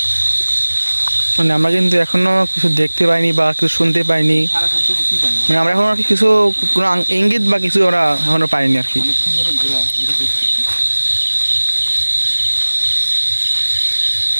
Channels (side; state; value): both; inverted; correlation -1.00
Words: মানে আমরা কিন্তু এখনো কিছু দেখতে পাইনি বা কিছু শুনতে পাইনি, সারা শব্দ কিছুই পাই না। মানে আমরা এখনো আর কি কিছু কোনো ইঙ্গিত বা কিছু আমরা এখনো পাইনি আর কি। অনেকক্ষণ ধরে ঘোরা ঘুরে দেখতেছি।